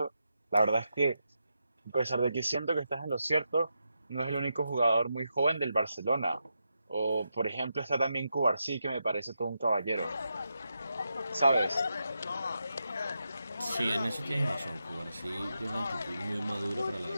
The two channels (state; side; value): inverted; both; correlation -0.86